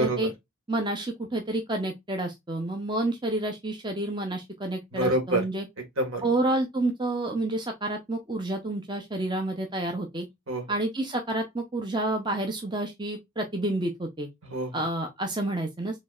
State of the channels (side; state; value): both; normal; correlation 0.42